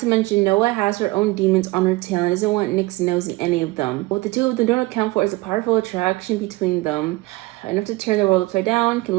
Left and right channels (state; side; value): quieter; left; 21.2 dB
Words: mention Noah has her own demons on her tail and doesn't want Nick's nose in any of them. What the two of them don't account for is a powerful attraction between them. Enough to turn the world upside down, can